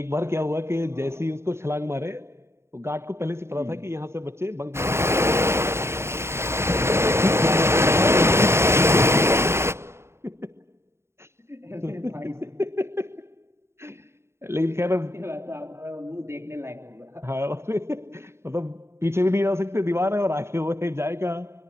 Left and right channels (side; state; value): left; late; 0.13 ms